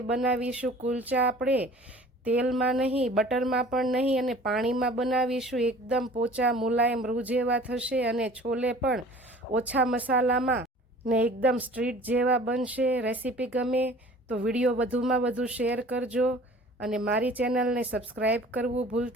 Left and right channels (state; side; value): normal; both; correlation 0.47